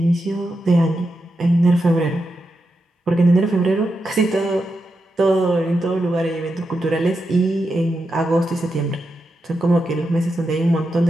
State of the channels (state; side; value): normal; both; correlation 0.87